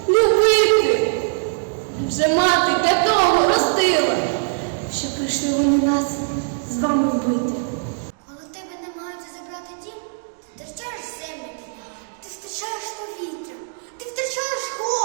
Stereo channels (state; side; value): silent; left; digital silence